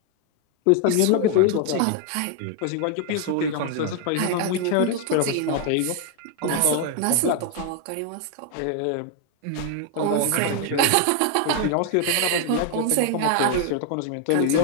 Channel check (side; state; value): both; different; correlation 0.00